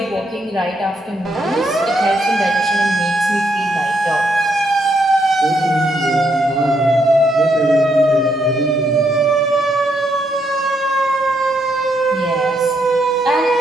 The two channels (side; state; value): both; normal; correlation 0.76